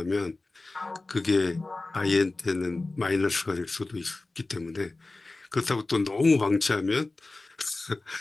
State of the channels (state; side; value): quieter; right; 3.2 dB